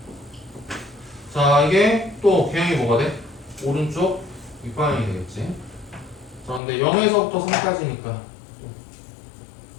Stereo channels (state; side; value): drops out; right; at 6.6 s